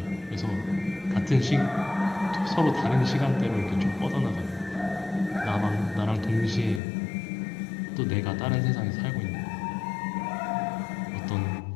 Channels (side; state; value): right; drops out; at 6.8 s